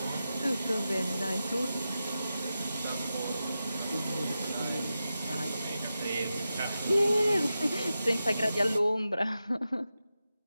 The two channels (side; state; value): both; inverted; correlation -0.91